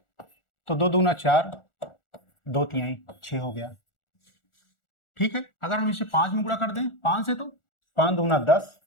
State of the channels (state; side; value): late; right; 1.4 ms